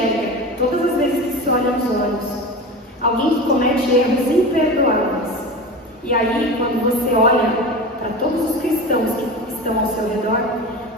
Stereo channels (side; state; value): both; normal; correlation 0.29